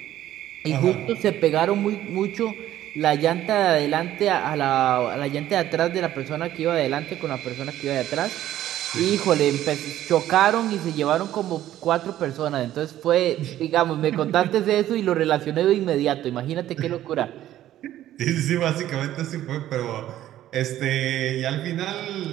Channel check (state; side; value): quieter; left; 12.9 dB